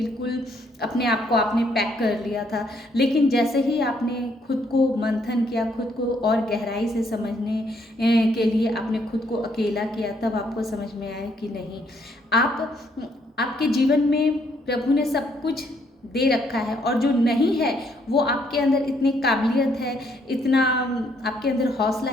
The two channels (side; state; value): both; normal; correlation 0.70